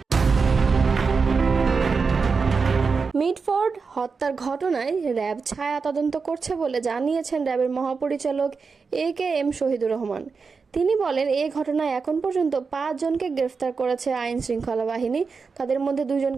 মিটফোর্ড হত্যার ঘটনায় র্যাব ছায়া তদন্ত করছে বলে জানিয়েছেন র্যাবের মহাপরিচালক AKM শহীদুর রহমান। তিনি বলেন, এই ঘটনায় এখন পর্যন্ত 5 জনকে গ্রেফতার করেছে আইন শৃঙ্খলা বাহিনী। তাদের মধ্যে 2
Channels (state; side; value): quieter; left; 5.0 dB